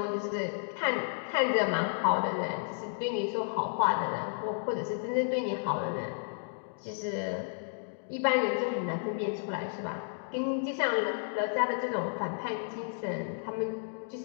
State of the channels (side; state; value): right; silent; digital silence